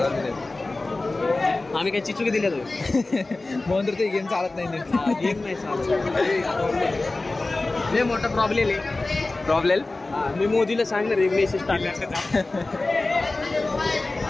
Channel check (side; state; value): right; quieter; 3.2 dB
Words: दिले. आम्ही काय चिचुकी दिल्या म्हणून तर ते गेम चालत नाही. गेम नाही चालत. लय मोठा प्रॉब्लेम. मी मोदीला सांगणार एक मेसेज टाकला.